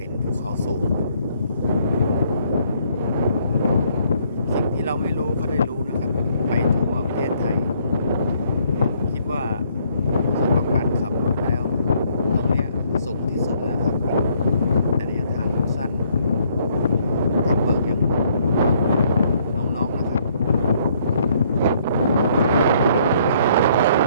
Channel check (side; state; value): both; inverted; correlation -0.66